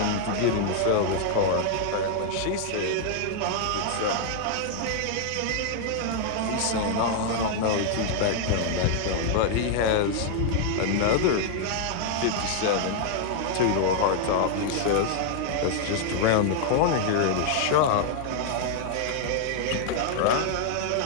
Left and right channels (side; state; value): both; different; correlation 0.00